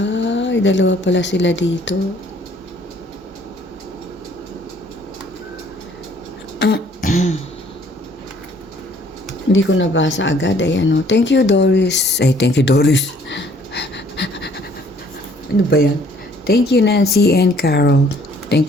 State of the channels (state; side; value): normal; both; correlation 0.60